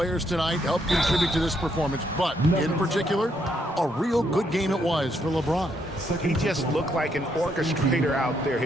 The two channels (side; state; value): both; normal; correlation 0.75